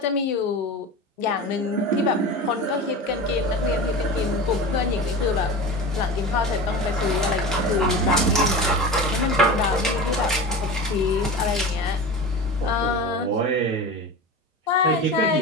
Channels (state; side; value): normal; both; correlation 0.30